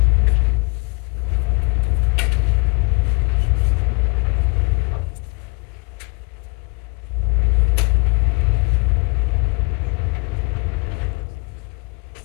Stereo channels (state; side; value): quieter; right; 27.0 dB